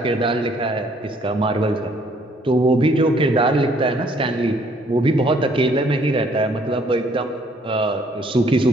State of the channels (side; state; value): both; normal; correlation 0.63